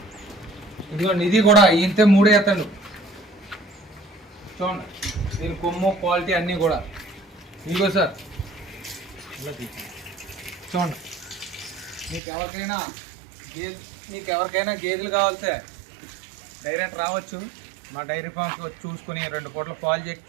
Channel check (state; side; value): drops out; left; at 12.2 s